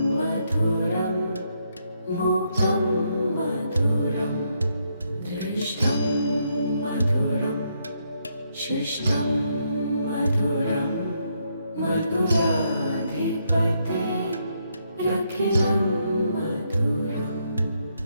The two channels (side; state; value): both; inverted; correlation -0.76